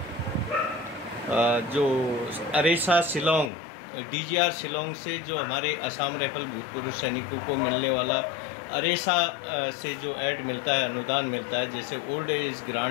जो अरेसा शिलोंग DGR शिलोंग से जो हमारे असम राइफल भूतपूर्व सैनिकों को मिलने वाला अरेसा से जो ऐड मिलता है, अनुदान मिलता है, जैसे ओल्ड एज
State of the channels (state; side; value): drops out; right; at 3.5 s